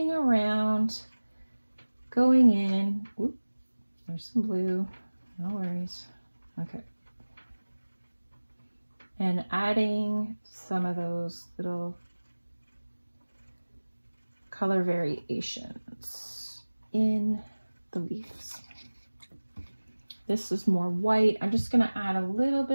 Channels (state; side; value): inverted; both; correlation -1.00